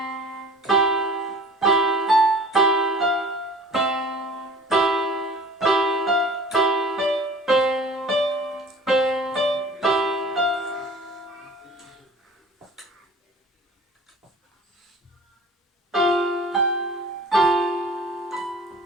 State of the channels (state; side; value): normal; both; correlation 0.45